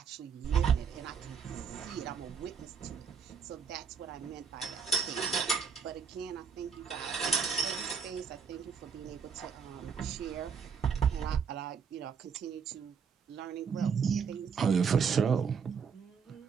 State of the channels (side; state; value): left; quieter; 6.3 dB